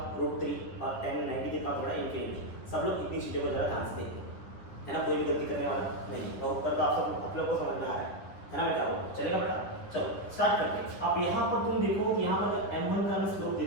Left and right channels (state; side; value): late; right; 10 ms